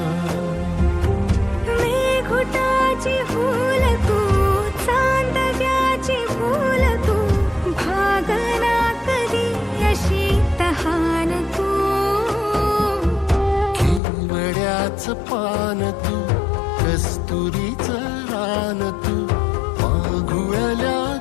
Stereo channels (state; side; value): drops out; right; at 14.0 s